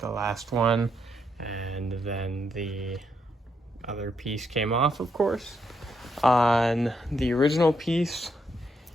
last one, and then the other piece came off, of course. On the original piece,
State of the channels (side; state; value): both; normal; correlation 0.78